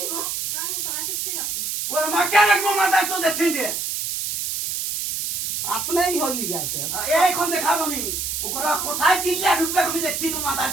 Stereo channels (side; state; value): right; noise; hiss, 2 dB below the sound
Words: কোনো ওর মা কে রাখবো মাথা তো দেখছেন যে আপনাই হলি গেছে এইখন দেখাবো আমি ওরা কোথায় দিল্লা ঢুকবে আমি দেখছি তো মাথার